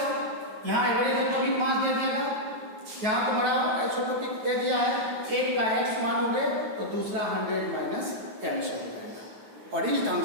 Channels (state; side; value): late; left; 9.2 ms